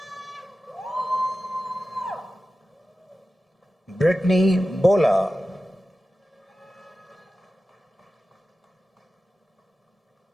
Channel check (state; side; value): normal; both; correlation 0.94